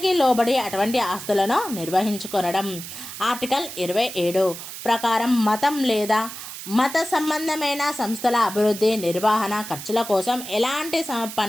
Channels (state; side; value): noise; right; hiss, 10 dB below the sound